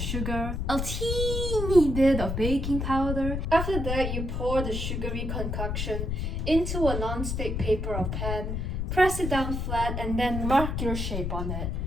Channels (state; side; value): noise; left; rumble, 2 dB below the sound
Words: a teeny bit of baking powder. After that, you pour the sugary concoction into a non-stick paper or pan, press it down flat, and then mark your shape on it.